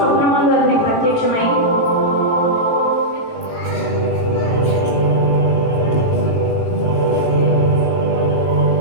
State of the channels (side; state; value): right; late; 18 ms